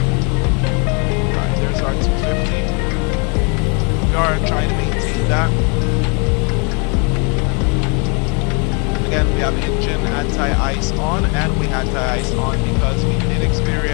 alright, there's our 250. We are trying to maintain that. Again, we have engine anti-ice on, and we anti-ice on because we did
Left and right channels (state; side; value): quieter; right; 35.3 dB